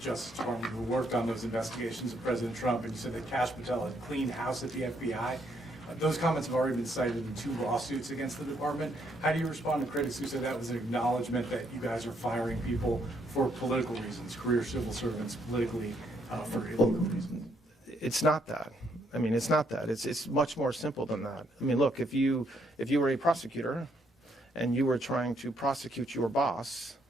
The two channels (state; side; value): normal; both; correlation 0.73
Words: Justice Department who worked on those investigations of President Trump, and you said that Kash Patel had cleaned house at the FBI. Those comments have already been cited in 2 lawsuits against the department. How do you respond to critics who say that was an acknowledgement that you guys are firing people for political reasons, career civil servants politically for illegal reasons? It's not that. I mean, it's not that. It's much more simple than that. I mean, look, if you were a prosecutor and you were trying to prosecute your boss,